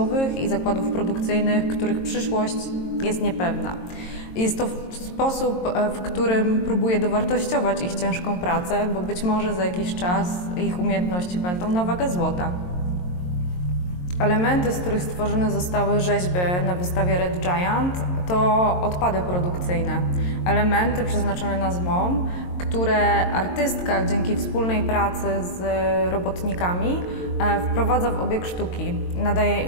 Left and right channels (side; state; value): right; late; 22 ms